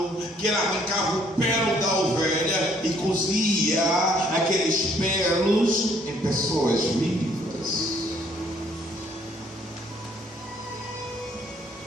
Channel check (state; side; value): normal; both; correlation 0.64